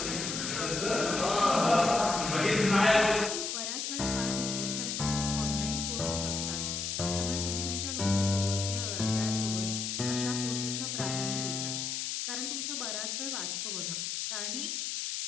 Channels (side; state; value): left; noise; hiss, 2 dB below the sound